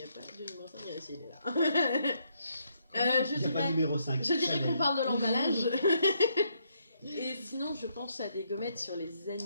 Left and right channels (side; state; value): both; inverted; correlation -0.74